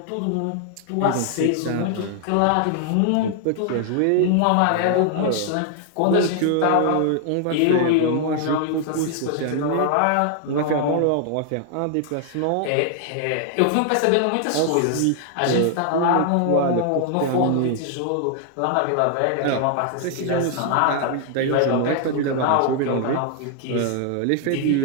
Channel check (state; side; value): different; both; correlation 0.00